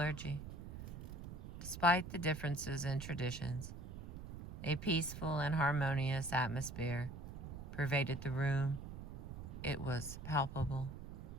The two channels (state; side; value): noise; right; rumble, 9 dB below the sound